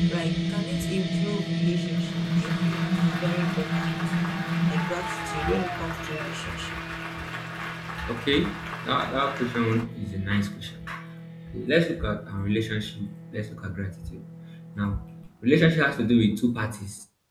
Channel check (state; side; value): identical; both; correlation 1.00